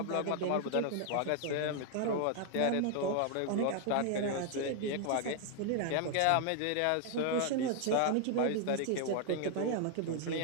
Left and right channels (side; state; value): both; different; correlation 0.00